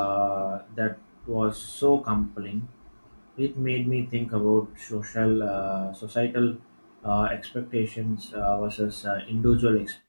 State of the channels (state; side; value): inverted; both; correlation -1.00